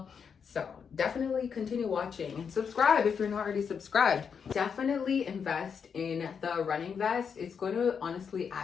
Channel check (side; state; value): right; quieter; 6.6 dB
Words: So definitely continue watching and subscribe if you're not already subscribed. Definitely invest in the running vest. It's going to honestly